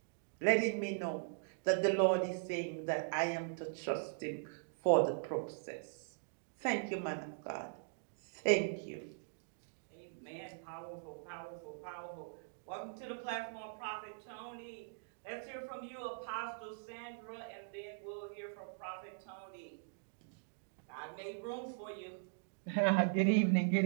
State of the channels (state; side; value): silent; left; digital silence